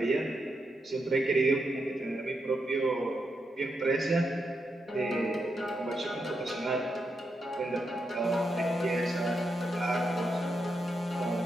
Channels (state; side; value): normal; both; correlation 0.84